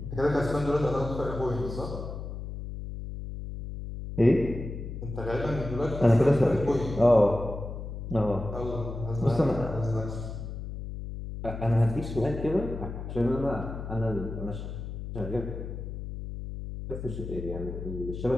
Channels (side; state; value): left; noise; hum, 7 dB below the sound